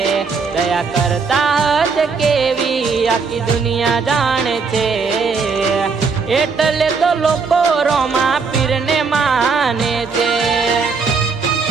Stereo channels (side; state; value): left; quieter; 4.9 dB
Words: દયા કરતા હશે કેવી આખી દુનિયા જાણે છે। એટલે તો લોકો રોમા પીરને માને છે।